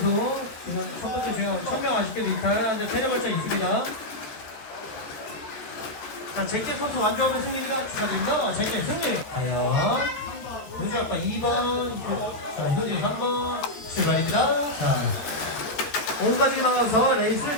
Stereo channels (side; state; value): right; late; 13 ms